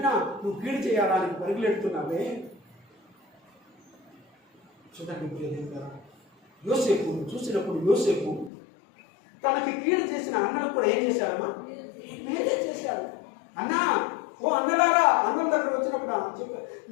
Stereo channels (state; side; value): drops out; right; at 8.5 s